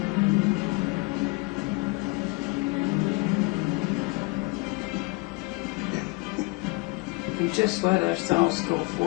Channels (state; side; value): quieter; right; 26.3 dB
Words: And just let ourselves go